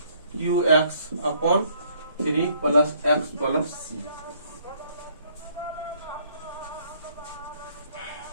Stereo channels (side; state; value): both; inverted; correlation -0.64